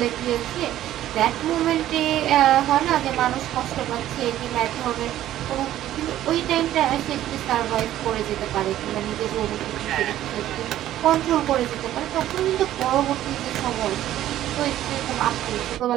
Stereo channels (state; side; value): quieter; left; 13.0 dB